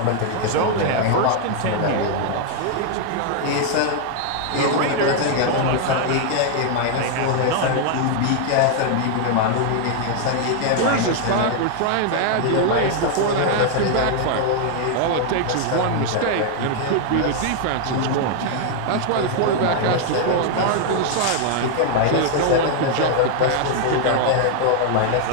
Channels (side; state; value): both; different; correlation 0.00